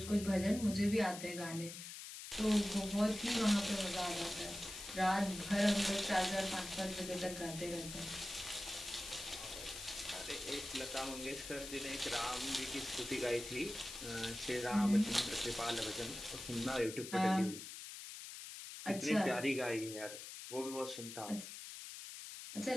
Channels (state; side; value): noise; left; hiss, 10 dB below the sound